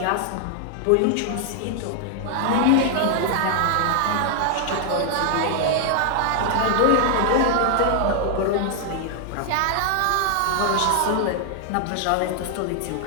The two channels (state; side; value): different; both; correlation 0.00